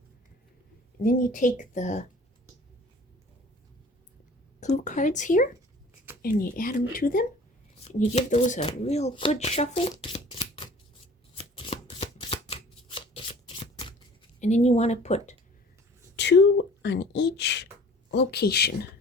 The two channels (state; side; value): normal; both; correlation 0.48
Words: And then you take the clue cards here and you add them to them, and you give those a real good shuffle. And then you want to put 2 on each location.